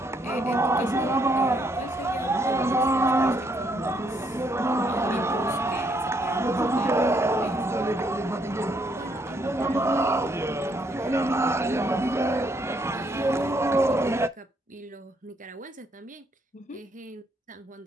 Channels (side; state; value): both; normal; correlation 0.72